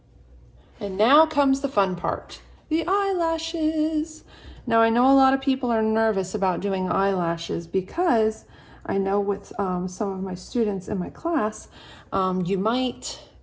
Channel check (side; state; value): both; identical; correlation 1.00